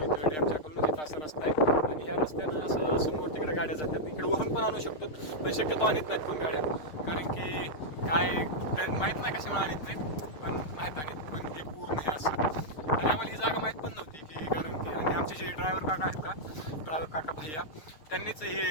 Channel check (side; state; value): right; late; 6.5 ms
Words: डॅमच्या खालून इथं असा रस्ता आहे. आणि ह्या रस्त्यानं असं समोर तिकडे गाड्या जातात, इकडे वरून पण आणू शकतो पण शक्यतो आणत नाहीत कोण गाड्या, कारण की काय माहीत नाही कशामुळे आणत नाहीत, पण नाहीत आणत. पण हे पूर्ण हे असं. आणि आम्हाला ही जागा माहीत पण नव्हती की, कारण की आणि आमचे जे ड्रायव्हर काका आहेत का, ड्रायव्हर काका भैया, त्यांनीच